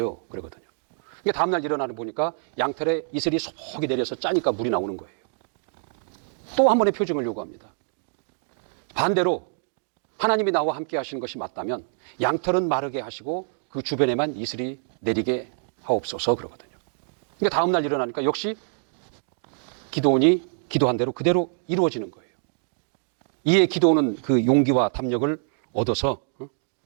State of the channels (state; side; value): silent; left; digital silence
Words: 그러거든요. 다음날 일어나서 보니까 양털에 이슬이 소복이 내려서 짜니까 물이 나오는 거예요. 또 한 번의 표징을 요구합니다. 반대로 하나님이 나와 함께 하시는 것이 맞다면 양털은 마르게 하시고 그 주변에만 이슬이 내리게 하옵소서 그러거든요. 그러니까 다음날 일어나니까 역시 기드온이 기도한 대로 그대로 이루어지는 거예요. 이에 기드온은 그 용기와 담력을 얻어서